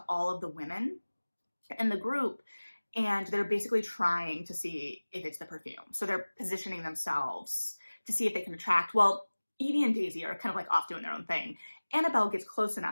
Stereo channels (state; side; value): inverted; both; correlation -1.00